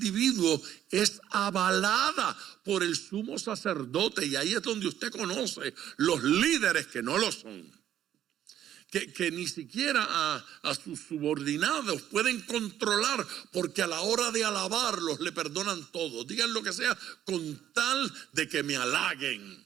es avalada por el sumo sacerdote. Y ahí es donde usted conoce los líderes que no lo son. Que ni siquiera a sus subordinados pueden controlar, porque a la hora de alabarlos le perdonan todo. Digan lo que sea con tal de que me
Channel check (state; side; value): quieter; left; 11.1 dB